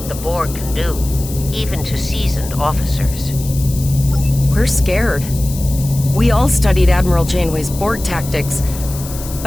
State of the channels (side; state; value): left; noise; hiss, 12 dB below the sound